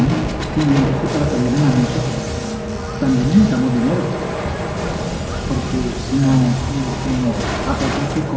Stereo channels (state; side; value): identical; both; correlation 1.00